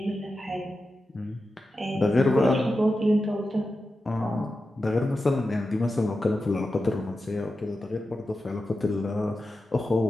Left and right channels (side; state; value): both; normal; correlation 0.91